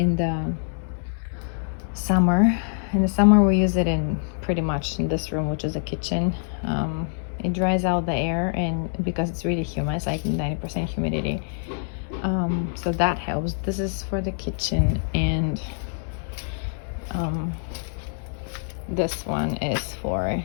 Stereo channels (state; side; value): silent; right; digital silence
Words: the summer. In the summer we use it in pretty much in this room, which is a kitchen. It dries out the air, and because it's really humid, it's like 90% humidity, so that helps. This is for the kitchen, and this one is for